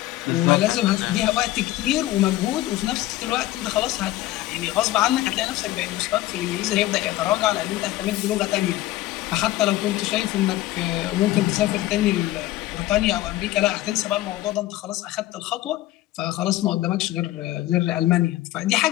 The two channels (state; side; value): quieter; right; 16.0 dB